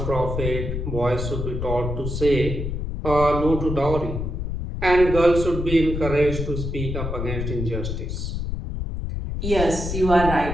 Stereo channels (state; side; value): noise; left; rumble, 4 dB below the sound